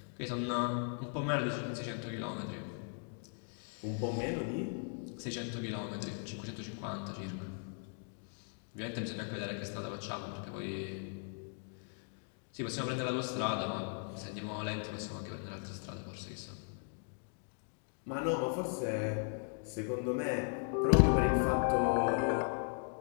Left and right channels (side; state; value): right; silent; 52 dB below the other